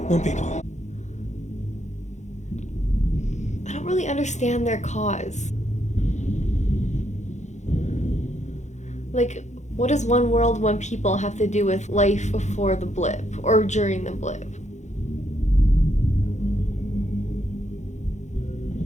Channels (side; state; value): right; late; 0.34 ms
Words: one people. I don't really understand their cause. Like, what does one world, one people have to do with life before the blip or during the blip?